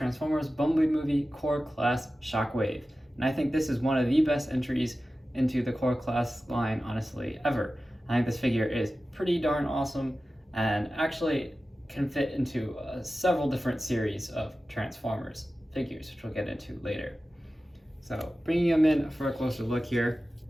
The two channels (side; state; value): both; normal; correlation 0.95